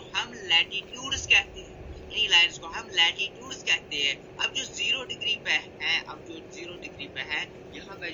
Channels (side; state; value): both; identical; correlation 1.00